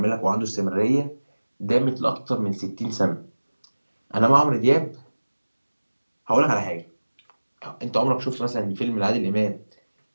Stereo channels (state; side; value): inverted; both; correlation -1.00